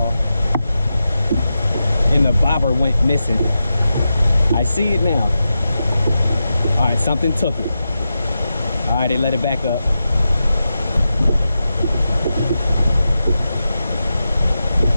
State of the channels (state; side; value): inverted; both; correlation -0.90